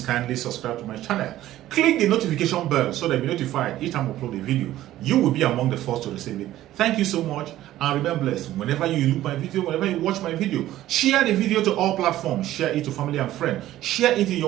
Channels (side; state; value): left; quieter; 14.2 dB